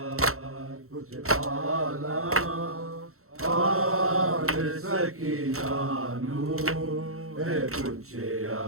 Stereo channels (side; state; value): left; late; 0.63 ms